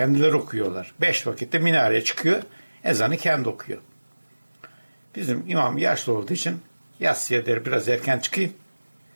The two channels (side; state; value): both; inverted; correlation -1.00